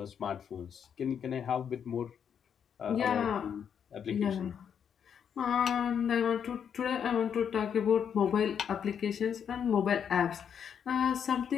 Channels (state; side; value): quieter; right; 7.9 dB